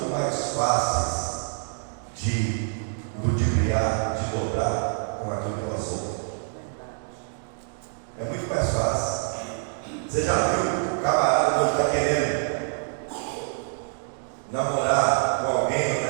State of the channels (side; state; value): left; silent; 61 dB below the other